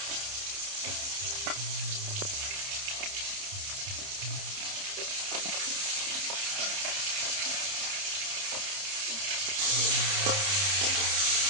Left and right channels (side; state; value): left; late; 30 ms